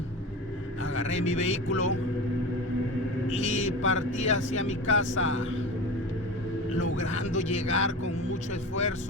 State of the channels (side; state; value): both; normal; correlation 0.29